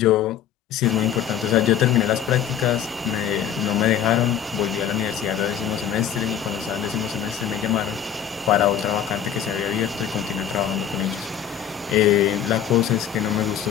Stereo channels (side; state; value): right; quieter; 9.4 dB